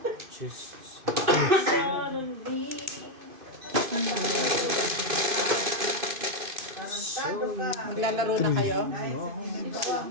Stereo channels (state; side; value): late; left; 2.5 ms